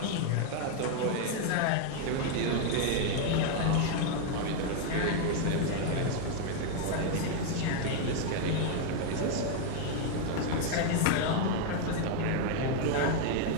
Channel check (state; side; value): different; both; correlation 0.00